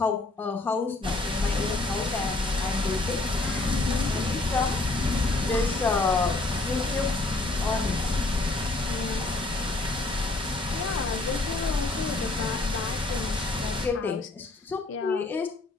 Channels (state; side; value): quieter; right; 3.1 dB